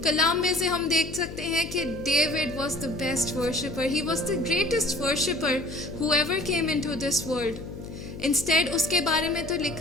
कलाम में से हम देख सकते हैं कि David was the best worshipper. He was the greatest worshipper who ever came into this world. Instead, उसके बारे में तो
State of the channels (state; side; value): noise; left; hum, 11 dB below the sound